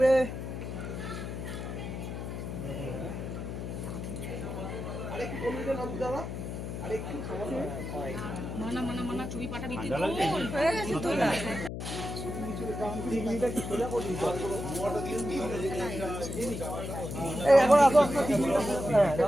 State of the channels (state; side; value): noise; left; hum, 6 dB below the sound